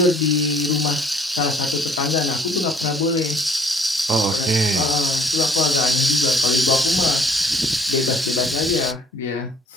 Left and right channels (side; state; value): both; normal; correlation 0.58